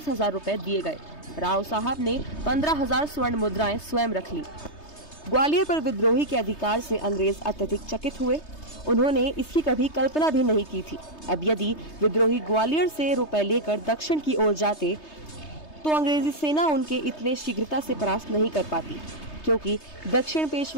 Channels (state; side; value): late; right; 3.3 ms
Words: रुपए दिए गए। राव साहब ने 15,000 स्वर्ण मुद्राएं स्वयं रख ली। ग्वालियर पर विद्रोही के अधिकार से अंग्रेज अत्यधिक चकित हुए। उन्होंने इसकी कभी कल्पना भी नहीं की थी। अब यदि विद्रोही ग्वालियर से रुपए लेकर दक्षिण की ओर जाते तो अंग्रेजी सेना उनके इतने शीघ्रता से परास्त नहीं कर पाती, क्योंकि दक्षिण